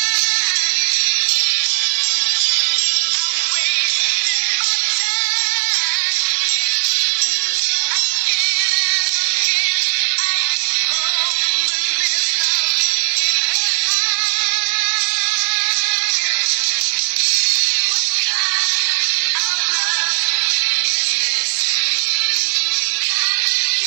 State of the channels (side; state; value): left; silent; digital silence